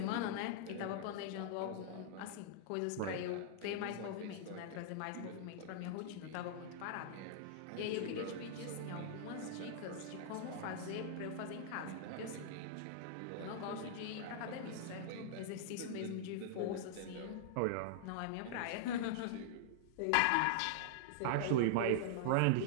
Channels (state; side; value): different; both; correlation -0.01